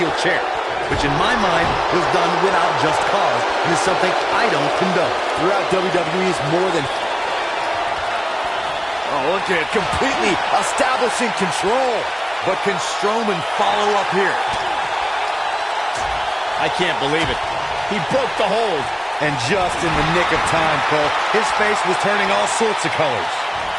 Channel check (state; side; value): identical; both; correlation 1.00